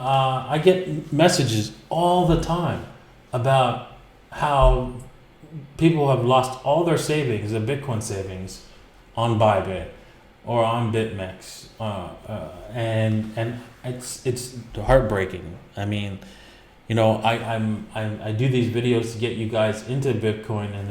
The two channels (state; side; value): identical; both; correlation 1.00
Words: get messages all the time about how people have lost all their savings, their Bitcoin savings, on Bybit or on BitMEX, and it's heartbreaking. I mean, you know, I do these videos to get you guys into Bitcoin, and